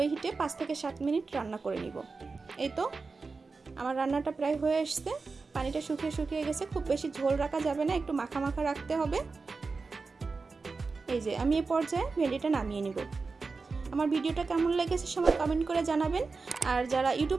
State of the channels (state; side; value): quieter; left; 4.3 dB